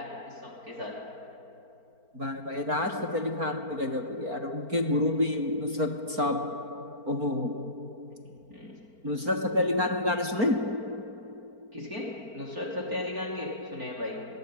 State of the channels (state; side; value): late; left; 4.4 ms